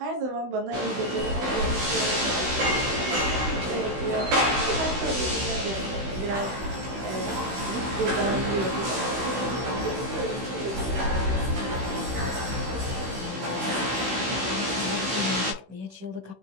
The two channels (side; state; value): left; late; 16 ms